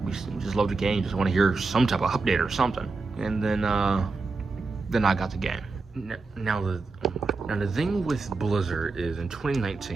we just love the game, just want to hear some type of update or something. And then I got the game. Now the thing with Blizzard is in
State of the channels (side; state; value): left; quieter; 3.9 dB